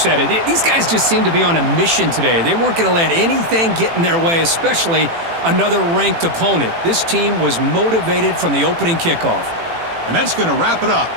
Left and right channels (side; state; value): left; late; 18 ms